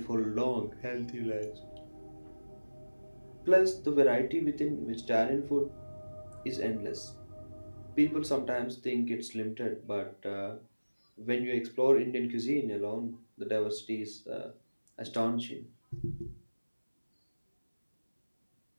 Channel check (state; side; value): inverted; both; correlation -1.00